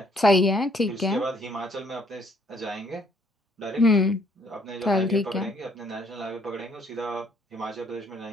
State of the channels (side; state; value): both; normal; correlation 0.65